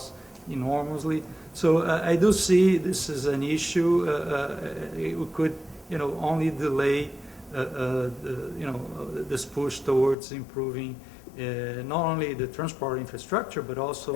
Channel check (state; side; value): drops out; right; at 10.2 s